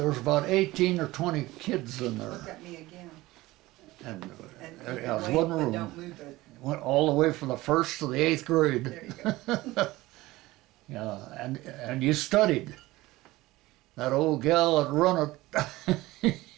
was about 18 or 20 kids in there. Look at me again. And And it was one room. Don't move it. Went all the way from the 1st to the 8th grade. There you go. Yeah, and you studied. That old gal that run it,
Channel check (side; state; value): left; quieter; 18.8 dB